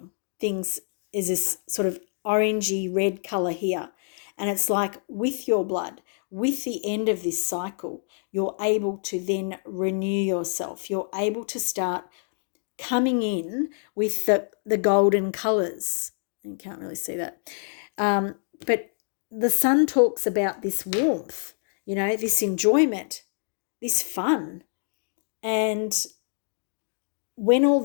Things is this sort of orangey red color here. And it's like with your blood, with the end of this cycle, you're able to then renew yourself. You're able to start coming in with the golden colors. You can't really see that. But the sun talks about this warmth, this enjoyment, this fun. And when all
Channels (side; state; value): right; silent; 61 dB below the other